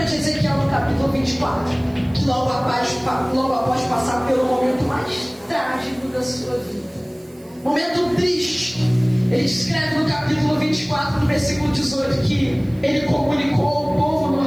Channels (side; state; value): right; noise; hiss, 28 dB below the sound